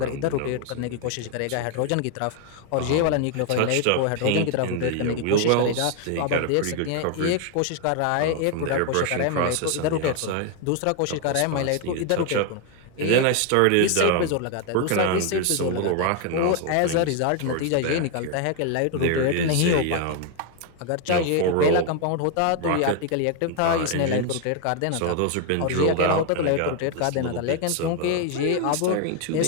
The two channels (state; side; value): different; both; correlation 0.01